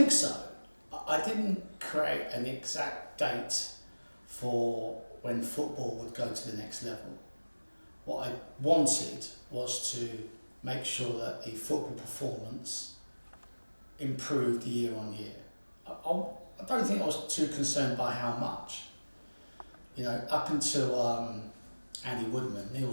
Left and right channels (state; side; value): inverted; both; correlation -1.00